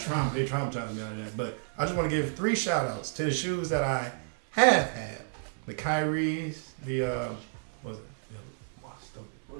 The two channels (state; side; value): silent; left; digital silence